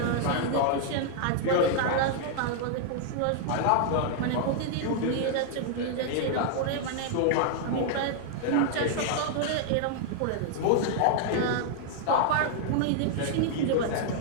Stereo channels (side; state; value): both; different; correlation -0.01